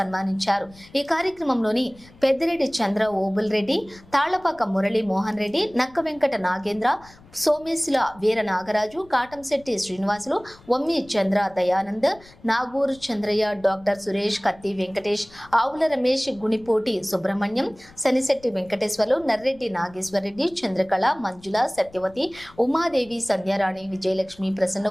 ఈ కార్యక్రమంలోని పెద్దిరెడ్డి చంద్ర ఓబుల్ రెడ్డి, తాళ్లపాక మురళీ మోహన్ రెడ్డి, నక్క వెంకట నాగేంద్ర, సోమేశుల వీర నాగరాజు, కాటంశెట్టి శ్రీనివాసులు, వమ్మి చంద్ర దయానంద్, నాగూరు చంద్రయ్య, డాక్టర్ సురేష్, కత్తి వెంకటేష్, ఆవుల రమేష్, గుణిపోటి సుబ్రహ్మణ్యం, శనిశెట్టి వెంకటేశ్వర్లు, నర్రెడ్డి నాగేశ్వరరెడ్డి, చంద్రకళ, మంజుల, సత్యవతి, ఉమాదేవి, సంధ్యారాణి, విజయలక్ష్మి,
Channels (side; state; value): left; noise; rumble, 25 dB below the sound